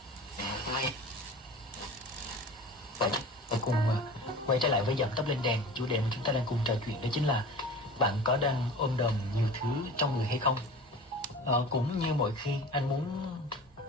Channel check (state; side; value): normal; both; correlation 0.38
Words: Và cùng quay trở lại với Dậm Tấp Lên Đèn. Chủ đề mà chúng ta đang cùng trò chuyện đó chính là bạn có đang ôm đồm nhiều thứ trong người hay không. Cũng như mọi khi anh muốn